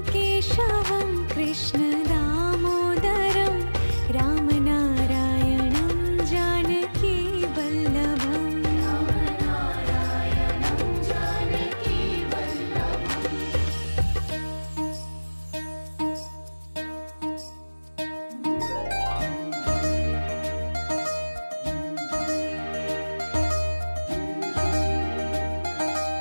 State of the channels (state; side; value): inverted; both; correlation -1.00